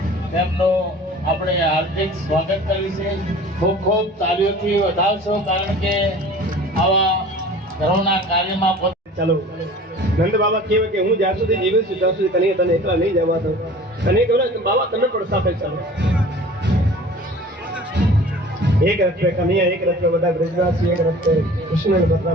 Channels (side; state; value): both; normal; correlation 0.44